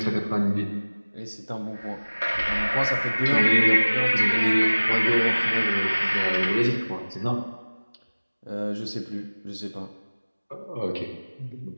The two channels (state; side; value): inverted; both; correlation -1.00